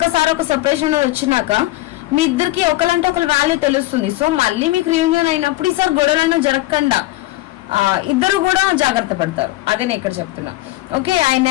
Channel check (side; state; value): right; quieter; 17.6 dB